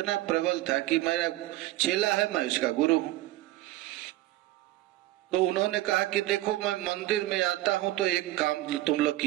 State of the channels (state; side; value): quieter; left; 16.5 dB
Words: प्रबल था कि मेरा चेला है, मैं उसका गुरु हूं। तो उन्होंने कहा कि देखो मैं मंदिर में आता हूं तो एक काम तुम लोग